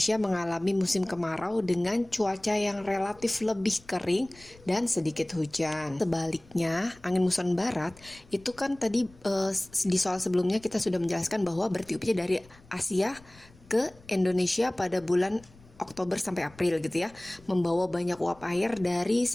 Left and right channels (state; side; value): noise; left; rumble, 25 dB below the sound